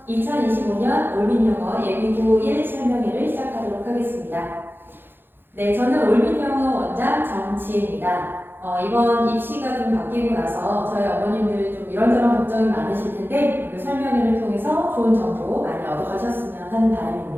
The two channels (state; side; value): late; left; 0.10 ms